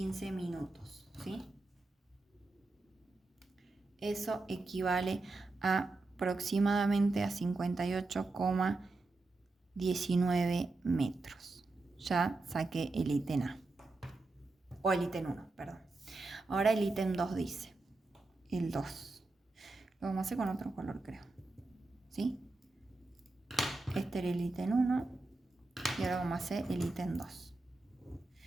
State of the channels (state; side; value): quieter; left; 3.3 dB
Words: minutos, ¿sí? Eso equivale a aproximadamente a 58,19 metros. Ya saqué el ítem A, o el ítem 1, perdón. Ahora el ítem 2 dice, el 2. Lo vamos a hacer con otro color, creo. ¿Sí? Este era el ítem 1 y ahora vamos a hacer el ítem 2.